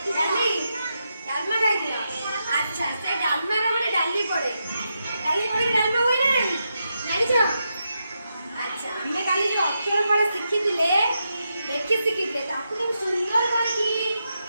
ଡାଲି ଡାଲମା ଖାଇଥିଲ? ଆଚ୍ଛା, ସେ ଡାଲମାର ମାନେ ଡାଲି ପଡେ, ଡାଲି ପଡିକି ଡାଲମା ହୁଏ ନା ନାହିଁ ଜାଣିଛ? ଆଚ୍ଛା, ଆମେ କାଲି ଯୋଉ ଅକ୍ଷର ଫଳ ଶିଖିଥିଲେ, ଲେଖି ଶିଖିଥିଲେ, ତାକୁ କେମିତି ସୁନ୍ଦର କରିକି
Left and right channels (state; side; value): inverted; both; correlation -0.85